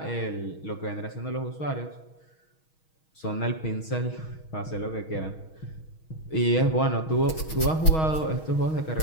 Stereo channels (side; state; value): right; late; 6.3 ms